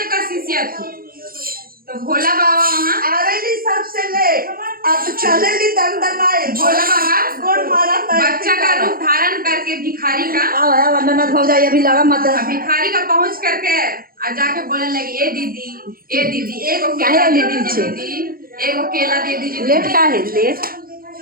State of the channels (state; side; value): late; left; 0.42 ms